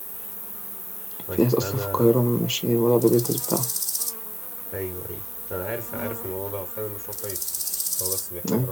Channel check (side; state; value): both; identical; correlation 1.00